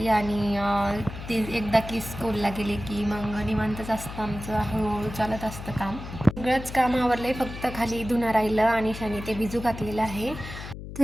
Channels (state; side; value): noise; left; hum, 10 dB below the sound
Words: आणि ते एकदा की स्कूलला गेले की मग निवांतच असतं आमचं, हळूहळू चालत असतं काम. सगळंच काम आवरलं, फक्त खाली धुणं राहिलं आणि शाने ते भिजू घातलेलं आहे.